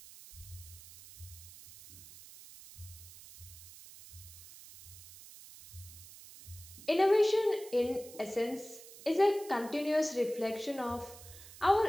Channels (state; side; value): noise; right; hiss, 17 dB below the sound